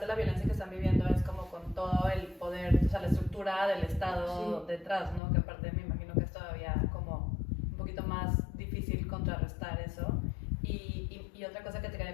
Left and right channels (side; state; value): right; drops out; at 5.2 s